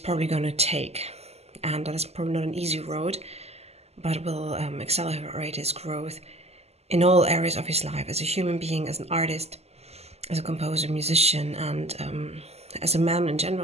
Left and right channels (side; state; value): left; late; 0.30 ms